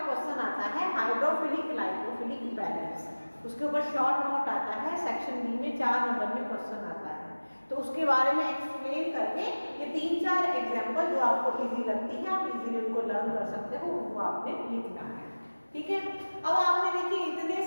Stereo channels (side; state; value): both; inverted; correlation -1.00